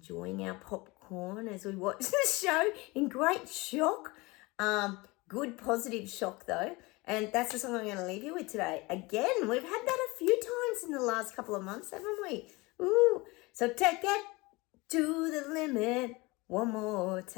our popcorn as we watch the show in great shock. Good positive shock though. And that's the song I'm going to leave you with today. Again, we've had that a few times in the last couple of months, haven't we? Ooh. So take it to the limit one more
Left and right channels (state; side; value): quieter; right; 23.8 dB